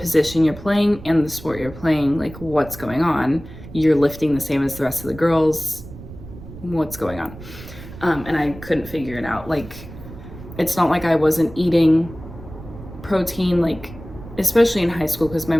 you're playing and the sport you're playing. Like, what's going on? You're lifting the same as the rest of the girls, what's going on? And I couldn't figure it out. Like, it's not like I wasn't eating protein, like, especially in high school, because my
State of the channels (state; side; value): noise; right; rumble, 15 dB below the sound